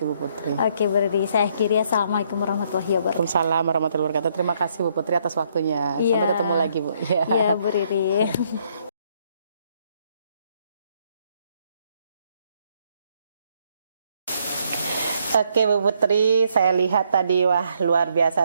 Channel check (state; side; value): inverted; both; correlation -0.70